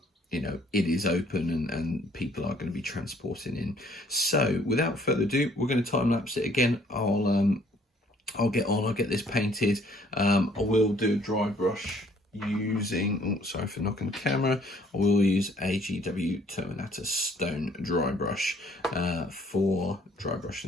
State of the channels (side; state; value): both; normal; correlation 0.61